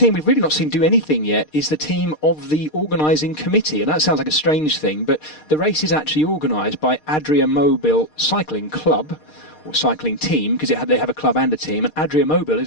we've really not seen do anything yet is the team of the organising committee. And that sounds like a strange thing, but the race is actually organised by Adria Mobil Cycling Club, or cycling team, because they have a club and a team. And Adria Mobil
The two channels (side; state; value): right; late; 6.5 ms